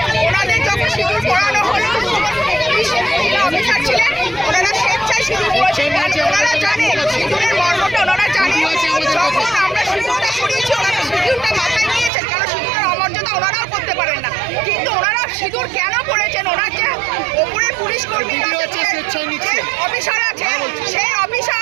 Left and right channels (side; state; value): left; drops out; at 12.1 s